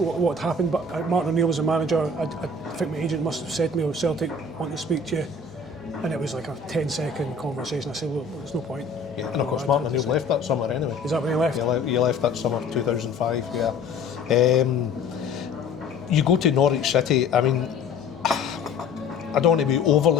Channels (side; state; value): right; quieter; 3.9 dB